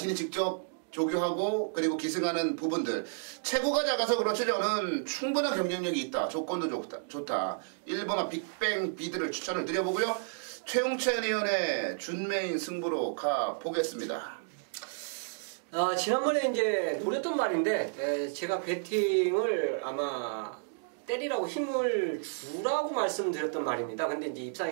직접 조교하고 그리고 기승하는 부분들 체구가 작아서 그렇지 저는 충분한 경쟁력이 있다. 조건도 좋다. 1번만 빅뱅 비드를 추천을 드려보고요. 최용찬 의원의 준메인 승부로 가보겠습니다. 지난번에 이제 노렸던 말인데 제가 배팅을 아마 때리라고 힘을 주라고 말씀드렸던 말입니다. 근데 이제 입상에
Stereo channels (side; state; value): left; silent; digital silence